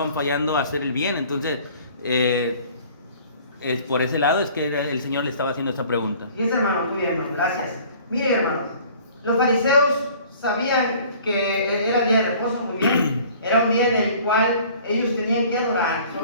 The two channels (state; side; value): inverted; both; correlation -0.51